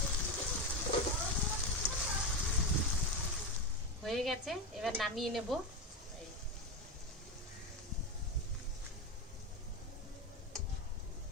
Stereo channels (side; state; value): both; normal; correlation 0.14